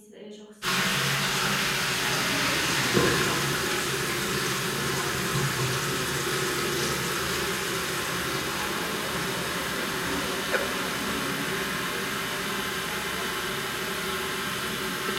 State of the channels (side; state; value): both; identical; correlation 1.00